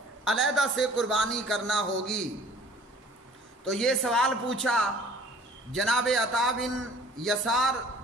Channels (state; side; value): normal; both; correlation 0.51